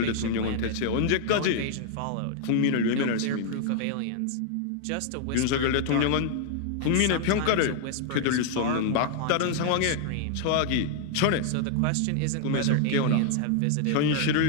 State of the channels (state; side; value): different; both; correlation -0.01